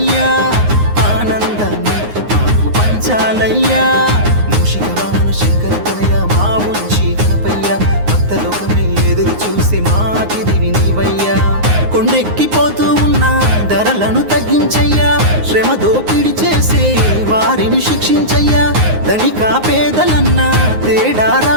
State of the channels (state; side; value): late; left; 9.6 ms